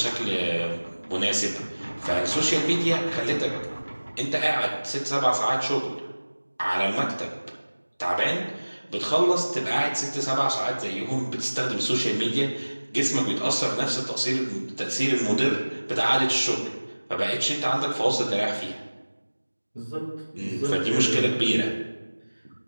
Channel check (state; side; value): inverted; both; correlation -1.00